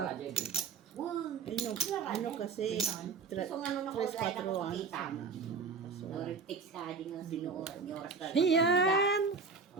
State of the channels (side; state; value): left; quieter; 5.0 dB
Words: Wow. Ano kasi? So, nga nung Tres, nakulay na quatro, ko ah. makita. Nag-text ka din nga sinuoras. Ni oras ka. Yan.